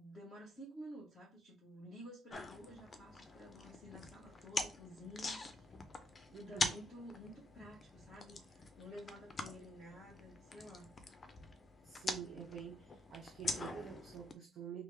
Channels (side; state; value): both; normal; correlation 0.78